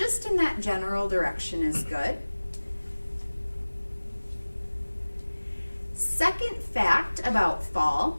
in that general direction is good. Second fact about fall,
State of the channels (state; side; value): inverted; both; correlation -1.00